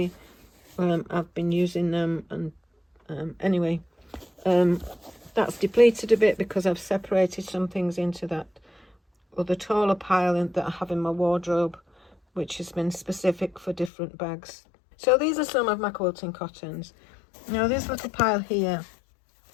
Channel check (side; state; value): right; drops out; at 13.9 s